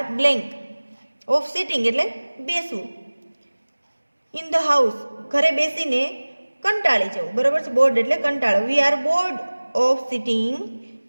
blank of sitting એટલે બેસવું, ઇન ધ હાઉસ ઘરે બેસીને કંટાળી જવું, બરાબર છે, બોર્ડ એટલે કંટાળો. We are board of sitting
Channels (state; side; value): inverted; both; correlation -1.00